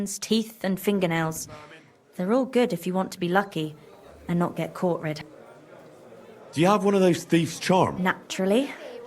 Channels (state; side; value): identical; both; correlation 1.00